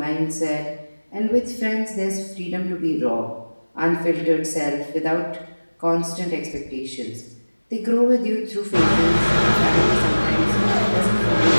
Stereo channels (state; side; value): inverted; both; correlation -1.00